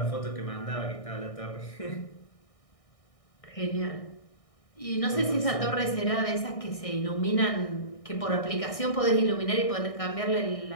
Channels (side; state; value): right; late; 1.6 ms